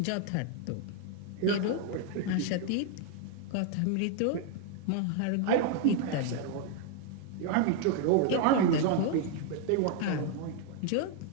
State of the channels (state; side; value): different; both; correlation 0.00